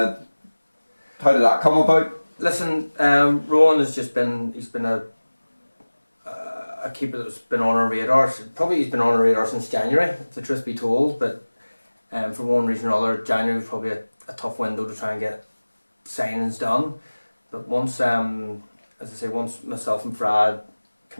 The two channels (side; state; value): both; inverted; correlation -1.00